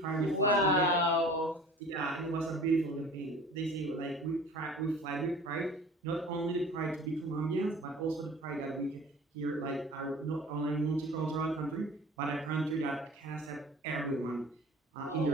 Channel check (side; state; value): both; normal; correlation 0.44